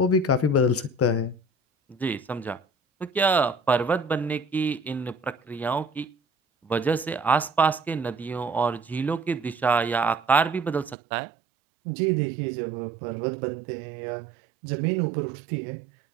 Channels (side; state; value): left; drops out; at 11.0 s